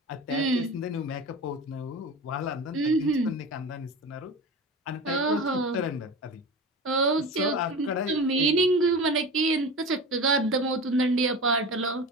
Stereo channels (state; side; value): normal; both; correlation 0.30